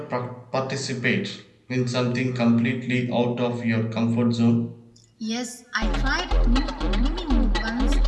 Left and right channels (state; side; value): identical; both; correlation 1.00